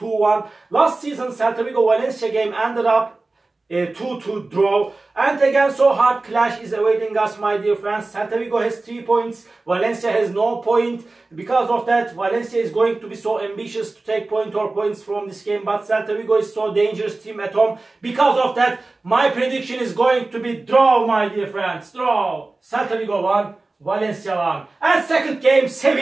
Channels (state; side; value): quieter; left; 3.3 dB